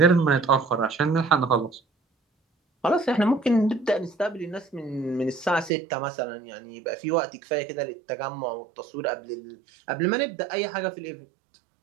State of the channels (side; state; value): left; drops out; at 5.7 s